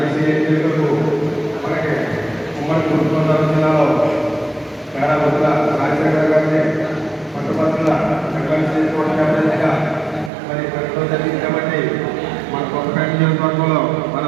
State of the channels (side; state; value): left; drops out; at 10.3 s